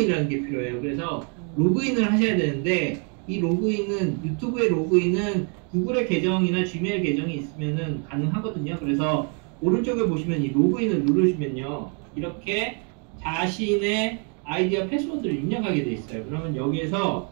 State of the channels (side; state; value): left; quieter; 38.7 dB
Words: 게 필요해요. 그래서 로그인을 하셔야 되는데 이 로그인은 유튜브의 로그인은 구글의 계정이나 지메일 계정이 있으면은 가능하거든요. 그래서 오른쪽에 보시면 이 로그인을 누르시면요 이렇게 자신의 아이디와 패스워드를 입력하게 돼 있어요. 그러면 여기에서